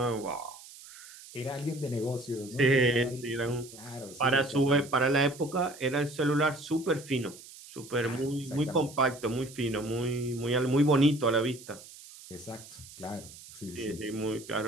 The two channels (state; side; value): noise; right; hiss, 18 dB below the sound